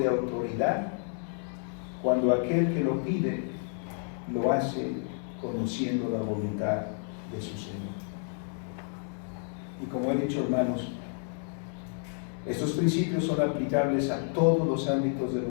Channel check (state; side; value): silent; right; 55 dB below the other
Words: autoridad cuando aquel que lo pide lo hace conociendo la voluntad de su Señor. Y como he dicho, hermanos, estos principios son aplicables a todos los ámbitos de